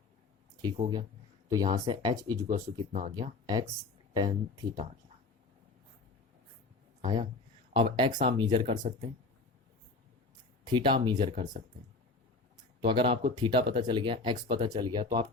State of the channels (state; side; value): quieter; right; 3.7 dB